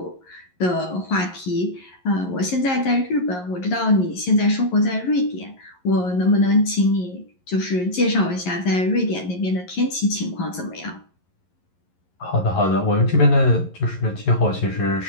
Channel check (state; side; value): late; right; 11 ms